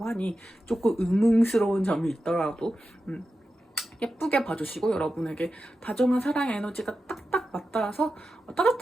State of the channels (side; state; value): both; normal; correlation 0.91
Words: 하니 조금 의문스러운 점이 있더라도 예쁘게 봐주시고 여러분에게 다정한 사랑의 에너지가 딱딱 맞닿아서